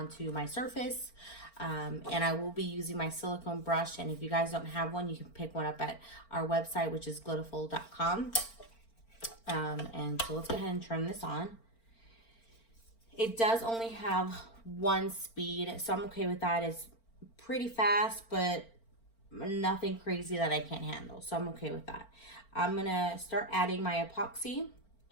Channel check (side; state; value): right; late; 4.4 ms